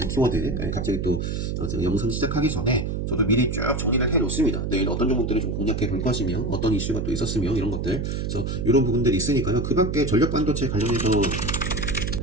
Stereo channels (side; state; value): right; noise; hum, 2 dB below the sound